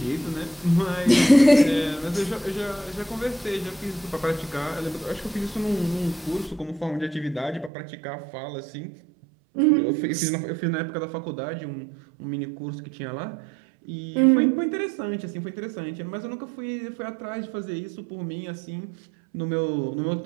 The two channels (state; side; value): drops out; left; at 7.7 s